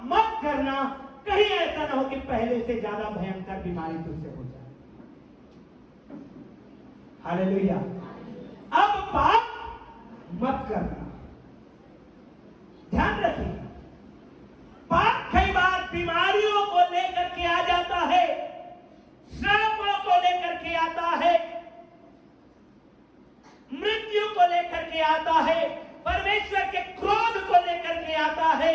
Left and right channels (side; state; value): both; identical; correlation 1.00